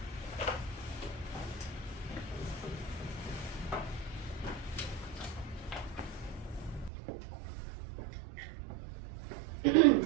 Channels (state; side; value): drops out; left; at 6.9 s